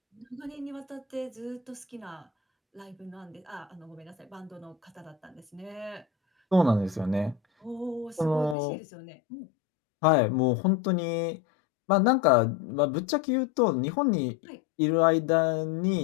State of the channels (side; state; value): right; drops out; at 8.6 s